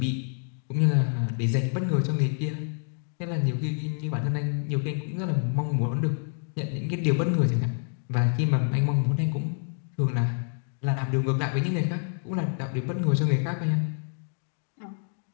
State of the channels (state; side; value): silent; right; 60 dB below the other